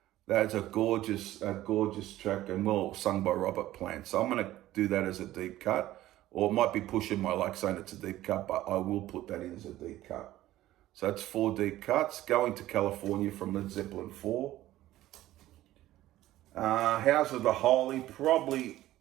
that's a gorgeous track and well sung by Robert Plant. So I'm gonna do that as a deep cut. or it might be pushing my luck saying it's a deep cut, but I will put that in as a deep cut. So that's 4 deep cuts. Going to California from Led Zeppelin 4. House of the Holy, probably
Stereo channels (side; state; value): left; quieter; 15.0 dB